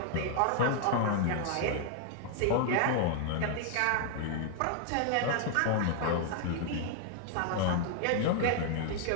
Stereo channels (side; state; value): both; different; correlation 0.00